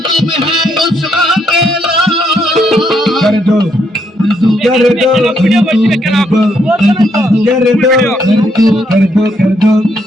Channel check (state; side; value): normal; both; correlation 0.74